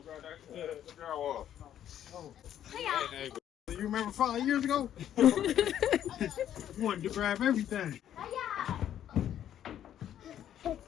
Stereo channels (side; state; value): right; quieter; 10.7 dB